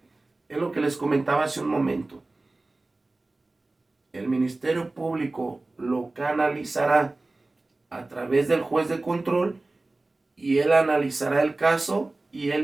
Es lo que les comentaba hace un momento. El Ministerio Público lo canalizará a través del juez de control y él analizará el caso y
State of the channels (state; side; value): quieter; left; 3.1 dB